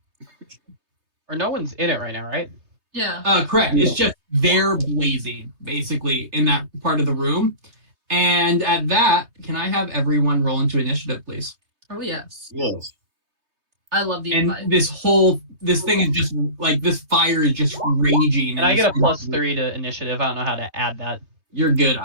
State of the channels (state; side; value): late; left; 3.2 ms